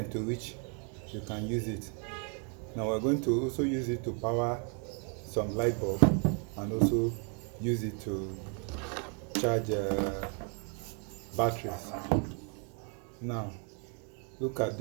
to which you can use it. Now we're going to also use it to power some light bulb and also use it to charge batteries. Now look at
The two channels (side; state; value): left; quieter; 38.7 dB